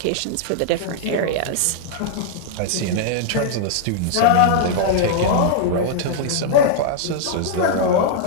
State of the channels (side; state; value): both; different; correlation -0.01